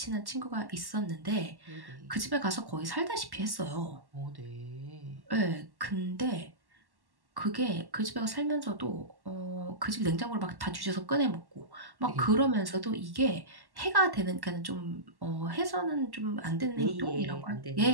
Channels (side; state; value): left; late; 1.1 ms